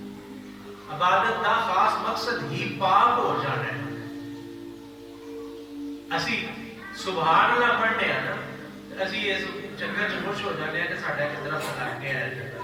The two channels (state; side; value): identical; both; correlation 1.00